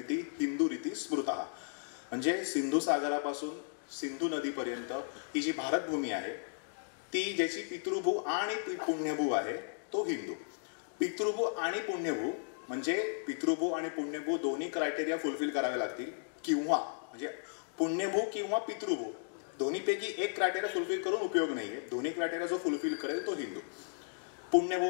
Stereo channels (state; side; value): silent; right; digital silence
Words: हिंदू रीती स्मृता. म्हणजे सिंधू सागरापासून सिंधू नदीपर्यंत ही जी भारतभूमी आहे ती ज्याची पितृभू आणि पुण्यभू आहे तो हिंदू. पितृभू आणि पुण्यभू म्हणजे पितृभू आणि पुण्यभू दोन्ही क्रायटेरिया फुलफिल करावे लागतील, किंवा म्हणजे पुण्यभू किंवा पितृभू दोन्हीपैकी एक क्रायटेरिया फुलफिल करून उपयोग नाहीये. दोन्ही क्रायटेरिया जो फुलफिल करेल तो हिंदू. पुण्यभू